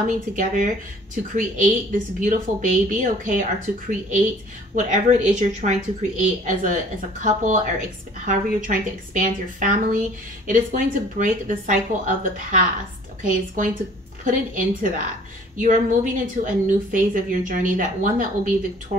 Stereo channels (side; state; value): both; normal; correlation 0.53